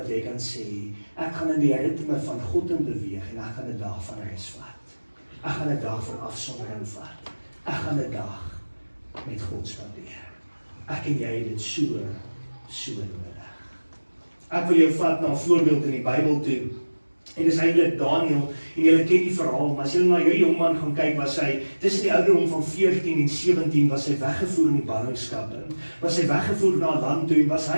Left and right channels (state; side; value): inverted; both; correlation -1.00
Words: jy kan sê, ek gaan in die ritme van God in beweeg en ek gaan 'n dag van rus vat. Ek gaan 'n dag van afsondering vat. Ek gaan 'n dag met God spandeer. Ek en jy het dit so nodig. Ek wil jou vat na 'n voorbeeld in die Bybel toe. En dis eintlik Daniel, en julle ken die verhaal, maar as julle na hierdie jongman gaan kyk, was hy, tussen die ouderdom van 14 en 17, was hy weggevoer in die ballingskap, was hy weggevoer na 'n land toe, en was